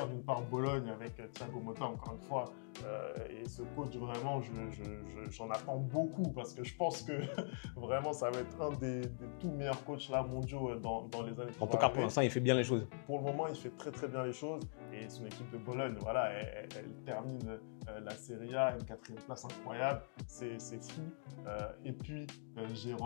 D'une part Bologne avec Thiago Motta, encore une fois, et ce coach vraiment, j'en attends beaucoup parce que je pense que vraiment ça va être un des tout meilleurs coachs là mondiaux dans les années qui vont arriver. Pour l'instant, il fait bien les choses. Pour le moment, il fait très bien les choses. Et son équipe de Bologne, voilà, elle termine la Serie A, une 4e place incroyable, c'est fou. Et puis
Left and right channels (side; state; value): right; silent; digital silence